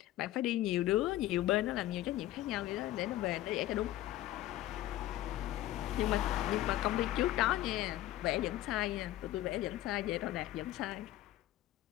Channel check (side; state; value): right; quieter; 14.7 dB